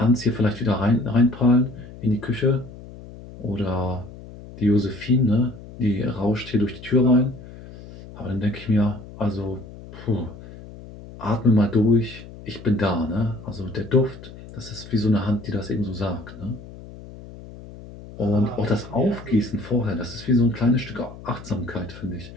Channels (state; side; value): noise; left; hum, 16 dB below the sound